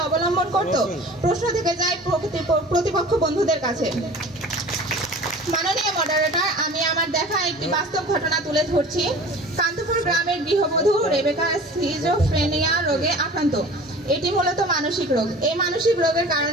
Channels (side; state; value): both; normal; correlation 0.42